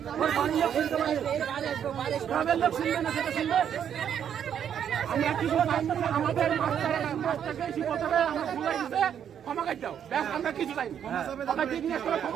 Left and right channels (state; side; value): quieter; left; 8.9 dB